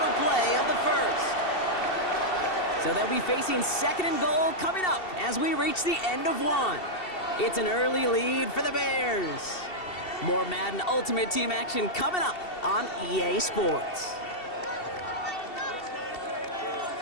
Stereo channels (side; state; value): right; late; 2.7 ms